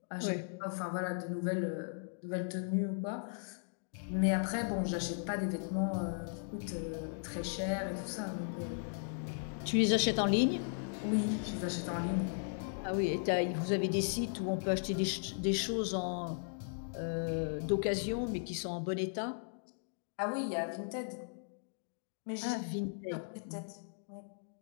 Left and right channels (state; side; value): silent; right; digital silence